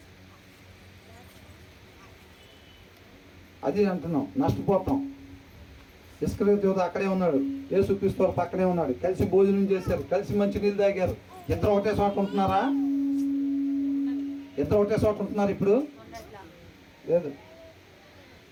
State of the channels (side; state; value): both; identical; correlation 1.00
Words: అది అంటున్నాం, నష్టపోతాం. ఇస్కరియోతు యూదా అక్కడే ఉన్నాడు, యేసుక్రీస్తు వారు పక్కనే ఉన్నాడు, కలిసి భోజనం చేశారు, కలిసి మంచి నీళ్ళు తాగారు. ఇద్దరు ఒకటే చోట ఉంటున్నారా? ఇద్దరు ఒకటే చోట ఉంటున్నారు ఇప్పుడు? లేదు.